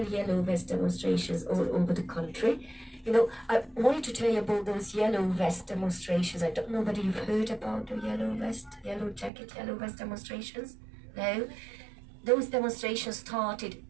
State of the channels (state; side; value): drops out; left; at 9.3 s